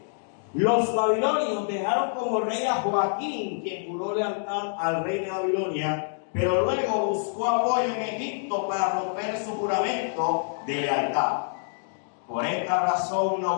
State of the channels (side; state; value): right; silent; digital silence